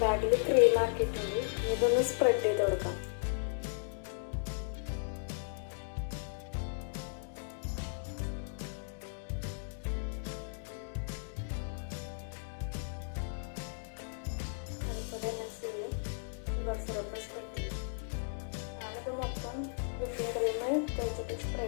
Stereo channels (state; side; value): silent; right; digital silence